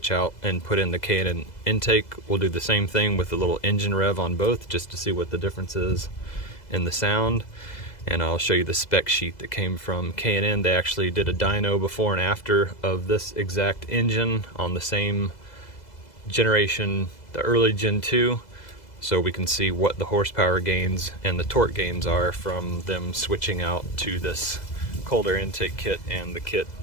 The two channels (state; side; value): late; right; 2.0 ms